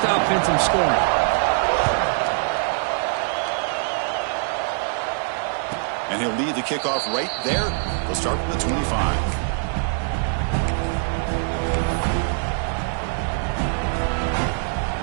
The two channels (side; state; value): left; silent; 63 dB below the other